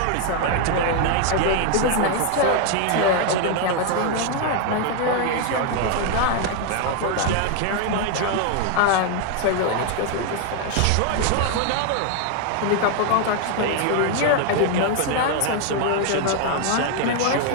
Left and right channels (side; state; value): both; different; correlation 0.00